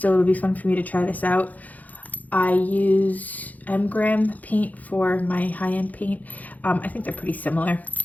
it'll be fun for me to try this out. I use M-Gram paint for my high-end paint. I think they're pretty similar.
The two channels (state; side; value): late; right; 0.079 ms